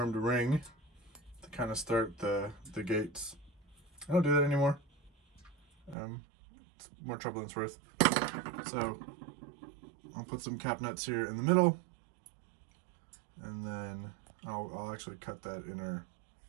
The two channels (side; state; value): left; drops out; at 6.0 s